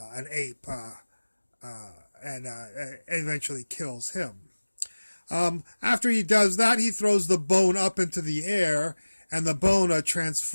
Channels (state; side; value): inverted; both; correlation -1.00